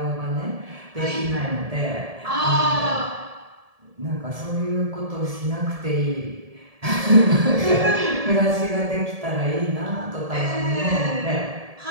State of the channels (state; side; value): late; left; 1.7 ms